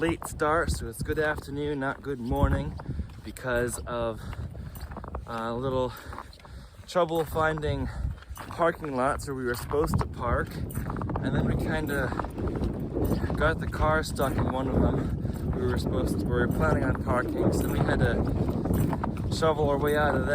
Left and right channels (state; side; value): identical; both; correlation 1.00